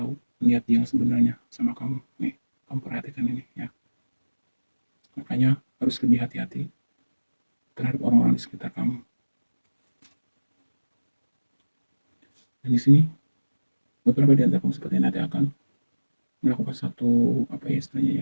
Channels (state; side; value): inverted; both; correlation -1.00